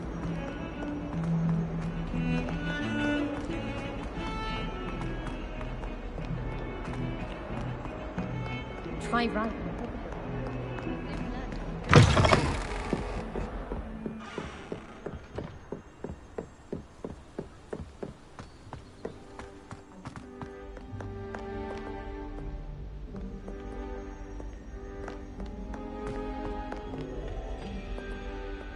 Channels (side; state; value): both; identical; correlation 1.00